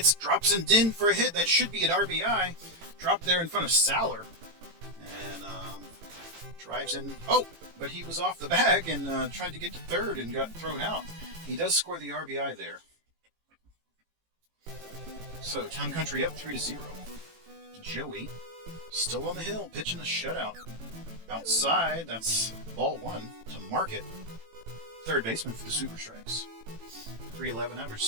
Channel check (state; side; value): late; left; 18 ms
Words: drops and in for a hit. That should be an RBI. Dropped there in front of Saller. And drives in. Oh, but he was off the bag and tried to get to third and got thrown out. He does score the RBI there. So Town Country up 3-0. Joey still on the hill, pitching a shutout. Outside, that's ball 1 to Market. Third baseman for the Super Strikes. 311 average,